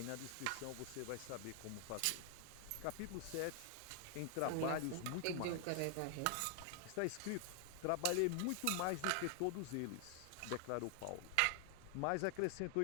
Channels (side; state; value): both; different; correlation 0.00